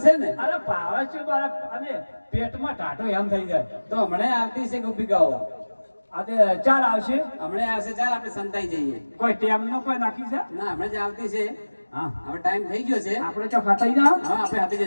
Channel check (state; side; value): inverted; both; correlation -1.00